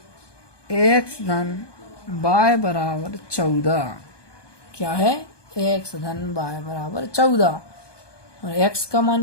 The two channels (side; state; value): right; late; 1.2 ms